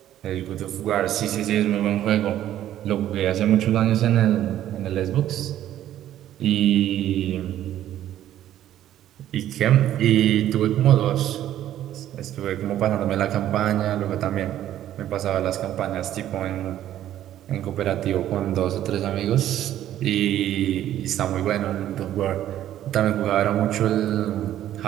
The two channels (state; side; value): quieter; left; 12.1 dB